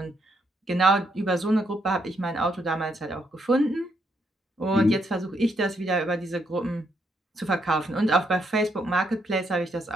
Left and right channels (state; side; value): normal; both; correlation 0.76